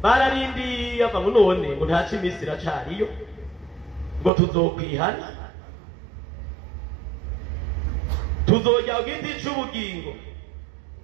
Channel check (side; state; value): left; drops out; at 4.3 s